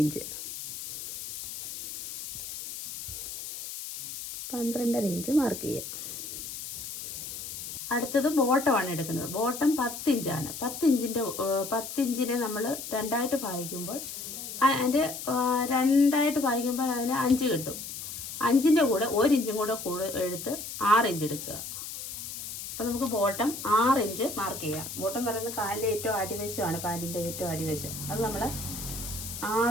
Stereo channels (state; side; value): noise; left; hiss, 8 dB below the sound